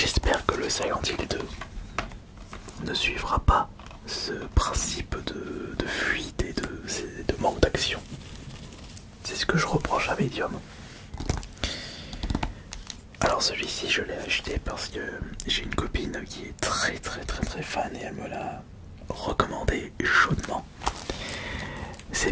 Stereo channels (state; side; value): identical; both; correlation 1.00